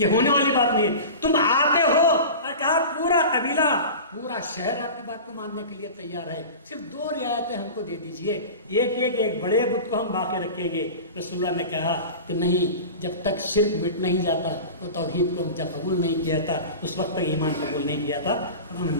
ہونے والی بات نہیں ہے. تم آتے ہو اور کہا پورا قبیلہ پورا شہر آپ کی بات کو ماننے کے لیے تیار ہے, صرف 2 رعایتیں ہم کو دے دیجئے, ایک بڑے بت کو ہم باقی رکھیں گے. رسول اللہ نے کہا کہ نہیں, جب تک شرک مٹ نہیں جاتا تو توحید کو ہم جب قبول نہیں کیا تھا اس وقت تک ایمان قبول نہیں کیا تھا. ہم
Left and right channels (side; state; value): both; inverted; correlation -0.32